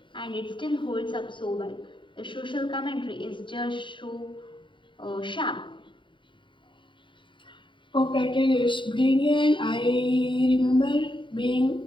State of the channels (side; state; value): right; late; 0.24 ms